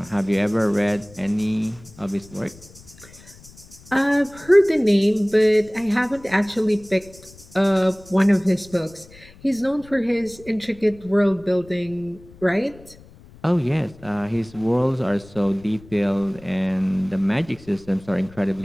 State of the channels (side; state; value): left; noise; rumble, 22 dB below the sound